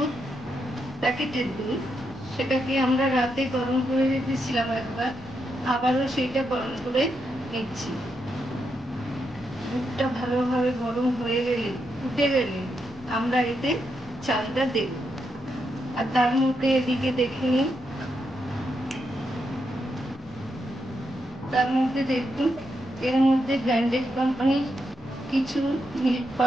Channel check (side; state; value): left; noise; rumble, 24 dB below the sound